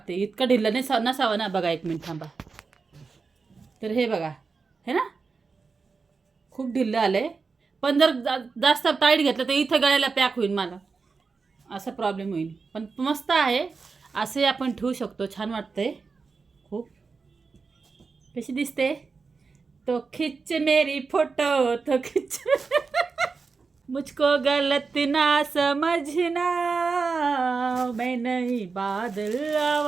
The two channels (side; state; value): left; quieter; 4.7 dB